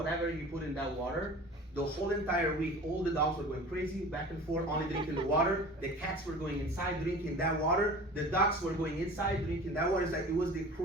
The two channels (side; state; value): both; normal; correlation 0.40